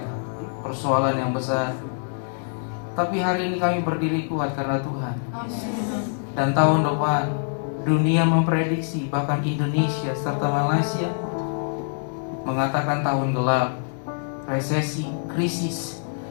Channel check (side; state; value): right; silent; digital silence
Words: persoalan yang besar. Tapi hari ini kami berdiri kuat karena Tuhan. Dan tahun depan dunia memprediksi, bahkan Indonesia serta Malaysia mengatakan tahun gelap, resesi, krisis.